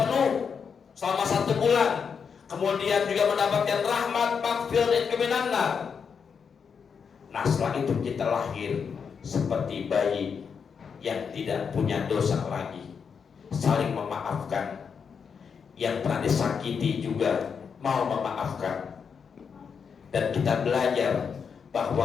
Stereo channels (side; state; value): right; quieter; 6.4 dB